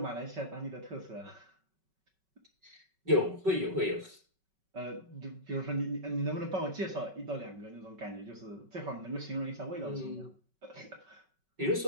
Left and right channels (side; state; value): left; late; 5.3 ms